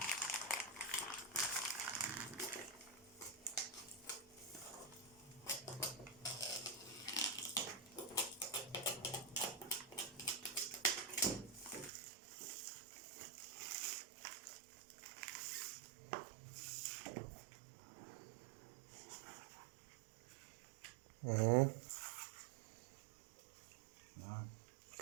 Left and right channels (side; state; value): left; drops out; at 11.9 s